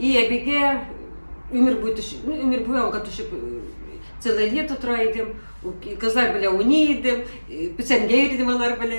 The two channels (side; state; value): both; inverted; correlation -1.00